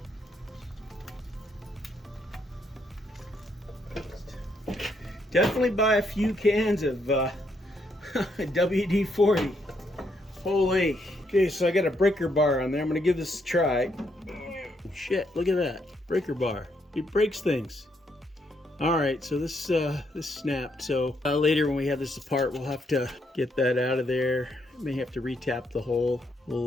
Definitely buy a few cans of WD-40. Holy. Okay, so I got a breaker bar on there. I'm gonna give this a try. Shit, look at that. Breaker bar. It breaks things. Alright, so this snapped. So later when we have this apart, we'll have to get that out of there. May have to retap the hole.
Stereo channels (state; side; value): normal; both; correlation 0.75